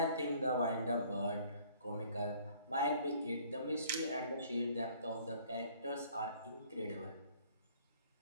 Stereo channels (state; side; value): inverted; both; correlation -0.57